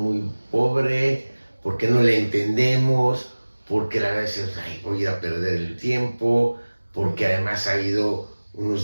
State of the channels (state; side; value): inverted; both; correlation -1.00